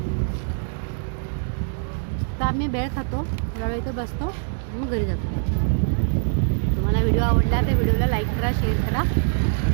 तर आम्ही भेळ खातो, जरा इथे बसतो, मग घरी जातो. तुम्हाला व्हिडिओ आवडला तर व्हिडिओला लाईक करा, शेअर करा.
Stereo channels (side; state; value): left; silent; digital silence